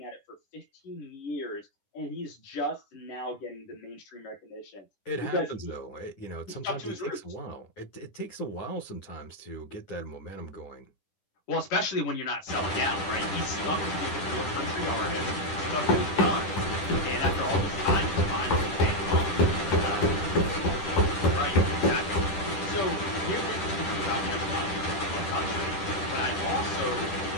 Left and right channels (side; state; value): right; late; 10 ms